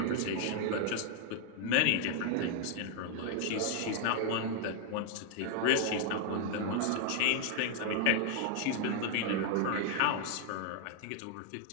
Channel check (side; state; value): both; different; correlation 0.00